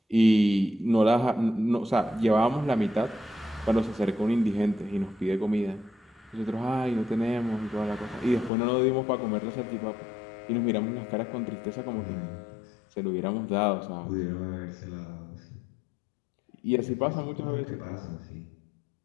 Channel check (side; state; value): right; drops out; at 8.5 s